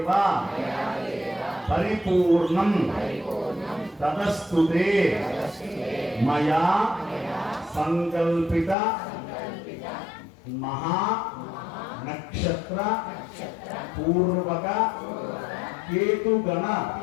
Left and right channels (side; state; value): right; drops out; at 8.8 s